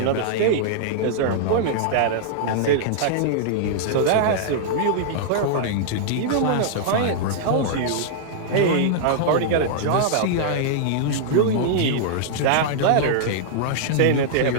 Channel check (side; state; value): both; different; correlation -0.01